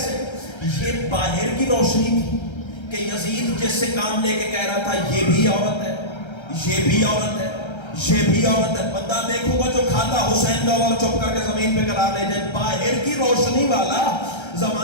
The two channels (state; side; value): late; right; 1.3 ms